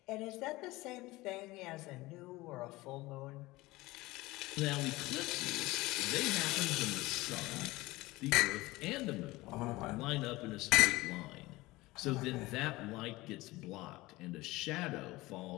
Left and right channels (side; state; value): right; quieter; 20.1 dB